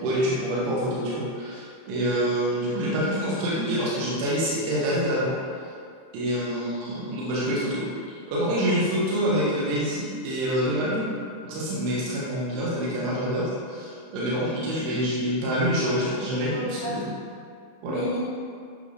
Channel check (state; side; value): late; left; 31 ms